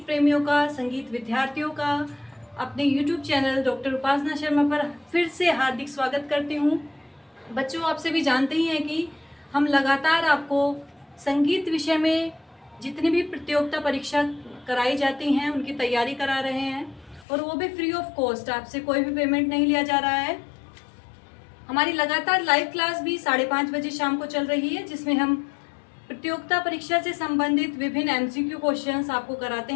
प्रेमियों का, संगीत विद्यार्थियों का अपने यूट्यूब चैनल डॉक्टर उपासना शर्मा पर फिर से हार्दिक स्वागत करती हूँ। बच्चों, आप सभी जानते ही हैं कि हम लगातार आपको संगीत विषय में जितनी भी प्रतियोगिता परीक्षा कराई जाती हैं उनकी तैयारी करा रहे हैं, और वो भी फ्री ऑफ कॉस्ट। आपसे कोई भी पेमेंट नहीं लिया जा रहा है। हमारी लगातार लाइव क्लास भी 5:30 बजे शाम को चल रही है, जिसमें हम प्रतियोगिता परीक्षा से संबंधित विभिन्न एमसीक्यू क्वेश्चंस आपको कराते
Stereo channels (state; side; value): drops out; right; at 17.2 s